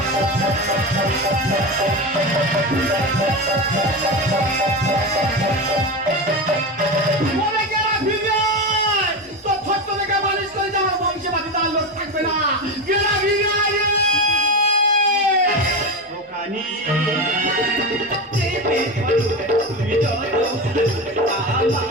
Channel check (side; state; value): both; normal; correlation 0.20